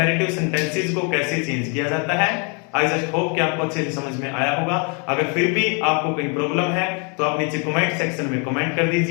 सेंटेंसेस को कैसे चेंज किया जाता है। आई जस्ट होप कि आपको अच्छे से समझ में आया होगा। अगर फिर भी आपको कोई प्रॉब्लम है तो आप नीचे कमेंट सेक्शन में कमेंट कर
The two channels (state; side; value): quieter; right; 35.4 dB